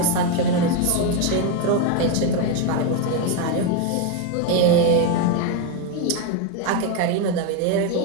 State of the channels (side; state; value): both; different; correlation 0.02